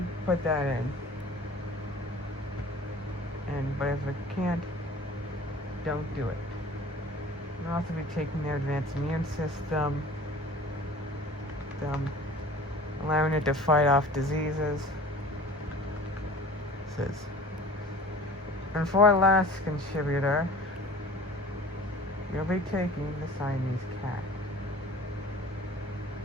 put that in. But if it can't, don't do it. We'll also be taking their advanced immune system, allowing it to fight off diseases. And for our last contributor, we'll be taking the Siamese cat.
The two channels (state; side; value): normal; both; correlation 0.43